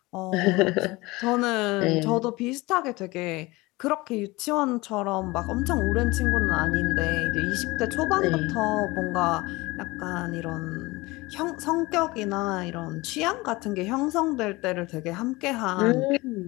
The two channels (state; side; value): quieter; right; 22.0 dB